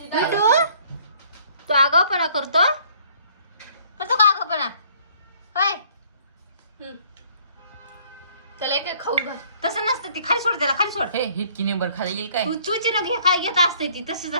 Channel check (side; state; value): both; inverted; correlation -0.60